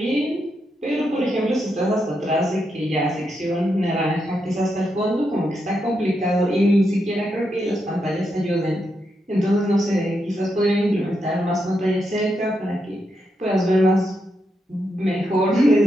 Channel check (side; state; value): both; normal; correlation 0.83